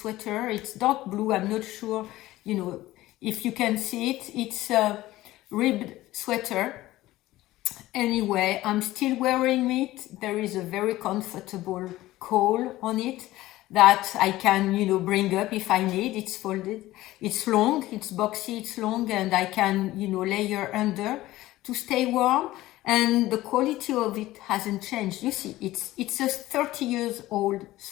It's dark blue. I'm not sure if you can see it. It's a ribbed sweater. Anyway, I'm still wearing it. There is a very comfortable collar on it that I can, bring up if I need. It's folded. It's long, it's boxy, it's long, and I can, layer under to stay warm. And the quality of it hasn't changed. You see, it's a 30 years old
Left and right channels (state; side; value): quieter; right; 16.6 dB